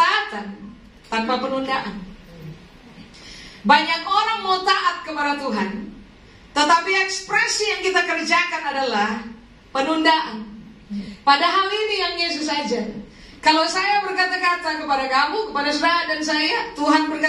tanpa penundaan. Banyak orang mau taat kepada Tuhan, tetapi ekspresi yang kita kerjakan adalah penundaan. Padahal ini yang Yesus ajar. Kalau saya berkata-kata kepada kamu, kepada saudara dan saya, Tuhan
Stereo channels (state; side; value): identical; both; correlation 1.00